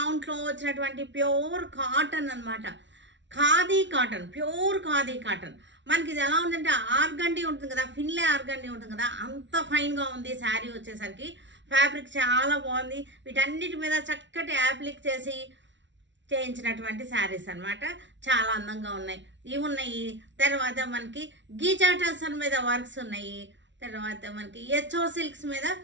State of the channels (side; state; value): left; late; 0.53 ms